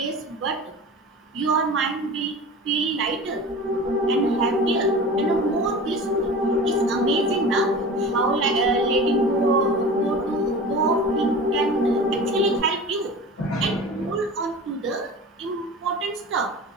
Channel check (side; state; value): both; normal; correlation 0.35